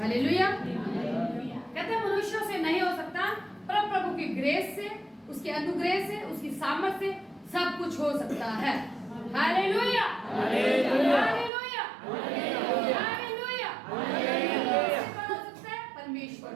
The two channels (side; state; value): left; drops out; at 11.5 s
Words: कहते हैं मनुष्यों से नहीं हो सकता, पर प्रभु की ग्रेस से, उसके अनुग्रह से, उसकी सामर्थ से सब कुछ हो सकता है। Hallelujah, hallelujah, hallelujah, hallelujah. हो सकता है परमेश्वर।